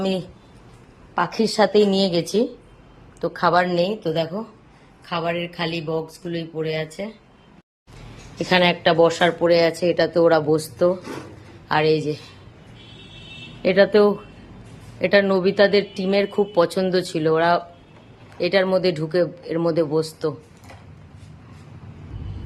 পাখির সাথেই নিয়ে গেছি, তো খাবার নেই। তো দেখো খাবারের খালি বক্সগুলোই পড়ে আছে। এখানে একটা বসার পড়ে আছে, এটাতে ওরা বসতো। আর এই যে এটাতেও, এটা নবিতাদের টিমের খুব পছন্দ ছিল, ওরা এটার মধ্যে ঢুকে এর মধ্যে বসতো।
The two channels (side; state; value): both; identical; correlation 1.00